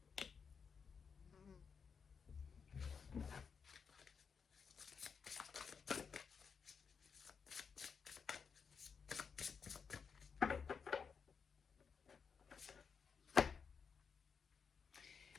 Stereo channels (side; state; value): right; quieter; 6.0 dB